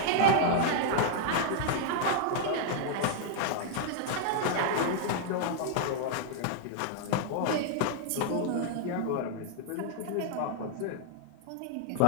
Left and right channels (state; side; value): different; both; correlation -0.01